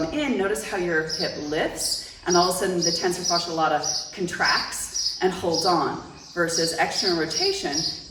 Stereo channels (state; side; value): identical; both; correlation 1.00